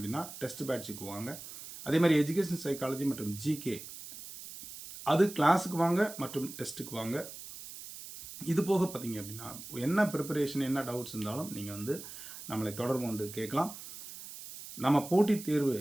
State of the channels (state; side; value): noise; right; hiss, 13 dB below the sound